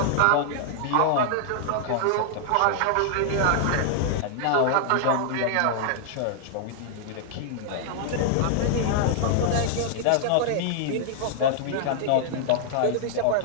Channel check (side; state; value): both; different; correlation -0.01